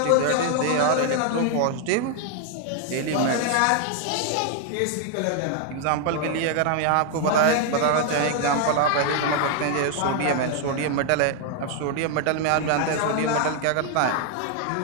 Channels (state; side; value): different; both; correlation 0.00